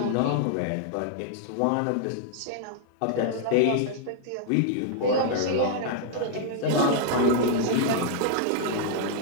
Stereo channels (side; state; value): both; different; correlation 0.00